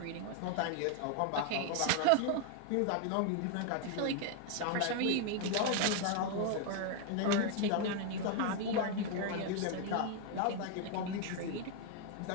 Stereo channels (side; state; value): both; different; correlation 0.01